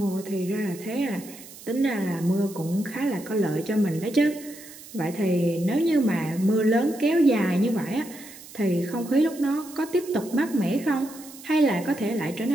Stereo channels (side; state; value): right; noise; hiss, 17 dB below the sound